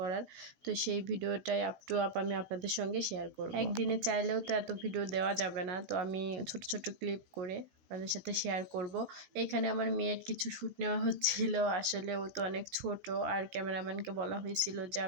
তো সেই ভিডিওটাই আপ টু আপ আমি আপনাদের সঙ্গে শেয়ার করব। একদিনে চাইলেও তো এত ভিডিও দেওয়া যাবে না, তো আমি ছোট ছোট ক্লিপ করে আপনাদের সাথে শেয়ার করব। এখানে আমার মেয়ের কিছু শ্যুট নেওয়া হচ্ছিল। আসলে ও তো অনেক ছোট, আর ক্যামেরাম্যানকে বলা হয়েছিল যে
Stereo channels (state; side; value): late; left; 16 ms